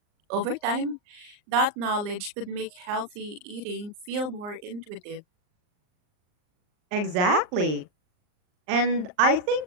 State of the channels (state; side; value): late; left; 39 ms